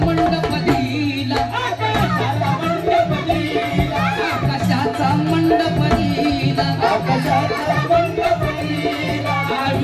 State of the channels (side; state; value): both; identical; correlation 1.00